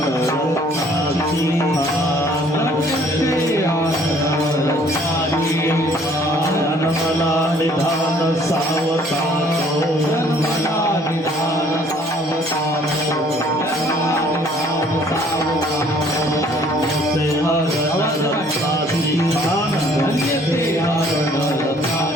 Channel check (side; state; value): both; normal; correlation 0.59